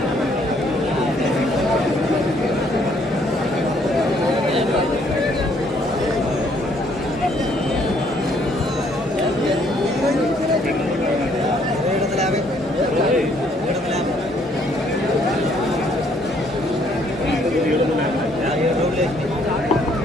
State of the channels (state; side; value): normal; both; correlation 0.66